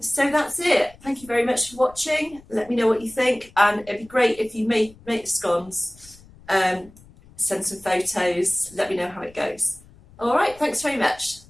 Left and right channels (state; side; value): noise; left; rumble, 24 dB below the sound